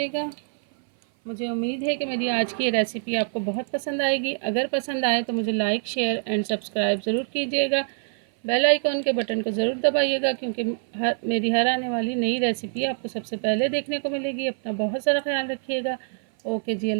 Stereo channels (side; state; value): left; silent; 58 dB below the other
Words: मुझे उम्मीद है कि मेरी आज की ये रेसिपी आपको बहुत पसंद आएगी। अगर पसंद आए तो मुझे लाइक शेयर एंड सब्सक्राइब ज़रूर कीजिएगा। बेल आइकॉन के बटन को ज़रूर दबाइएगा, क्योंकि मेरी हर आने वाली नई रेसिपी आपको सबसे पहले देखने को मिलेगी। अपना बहुत सारा ख्याल रखिएगा। ओके जी,